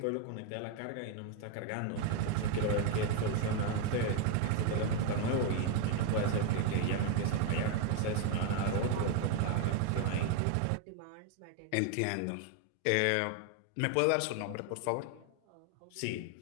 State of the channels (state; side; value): different; both; correlation 0.01